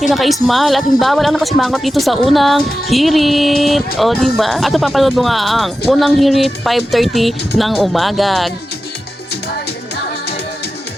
naka-smile at bawal ang nakasimangot dito sa unang hirit. O diba? At papanood mo nga ang unang hirit 5:30 ng umaga.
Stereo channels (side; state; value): both; normal; correlation 0.93